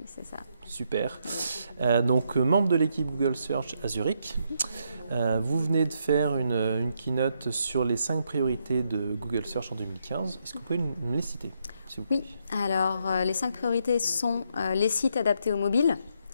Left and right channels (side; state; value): both; inverted; correlation -0.77